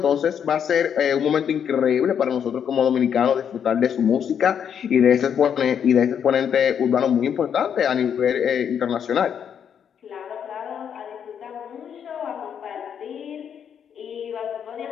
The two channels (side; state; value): right; quieter; 8.2 dB